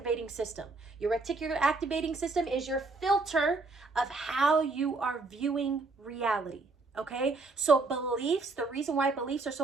system. Your reticular activating system is your filter of how you are viewing reality. Okay? So beliefs, the reason why beliefs are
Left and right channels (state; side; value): quieter; left; 3.6 dB